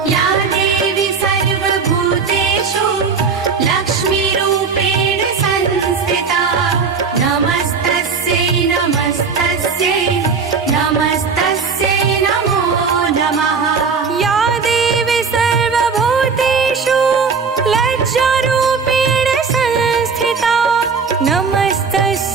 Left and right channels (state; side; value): quieter; left; 5.3 dB